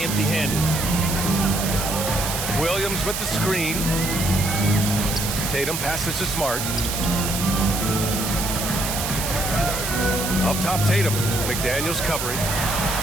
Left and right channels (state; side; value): noise; right; hiss, 3 dB below the sound